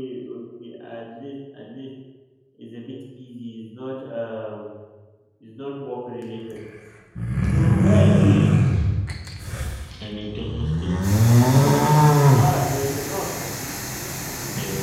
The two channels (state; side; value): identical; both; correlation 1.00